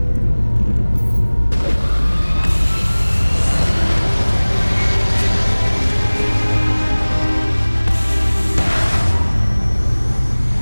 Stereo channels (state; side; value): inverted; both; correlation -1.00